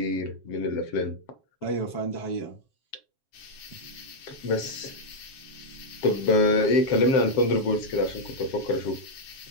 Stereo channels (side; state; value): right; late; 7.4 ms